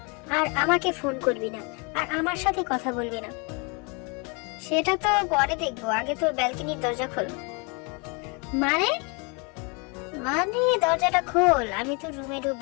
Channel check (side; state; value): right; quieter; 31.7 dB